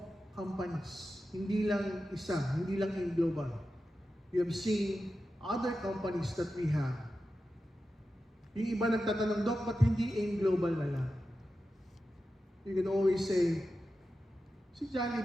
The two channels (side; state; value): both; normal; correlation 0.91